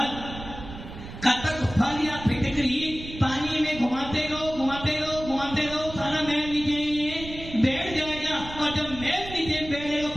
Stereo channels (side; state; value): right; noise; rumble, 12 dB below the sound